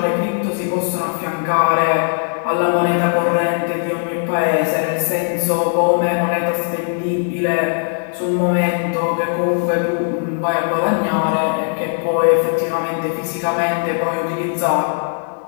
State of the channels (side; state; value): right; silent; 67 dB below the other